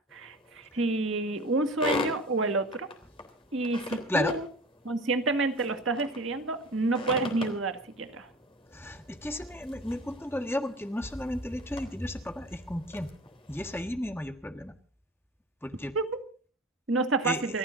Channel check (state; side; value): normal; both; correlation 0.39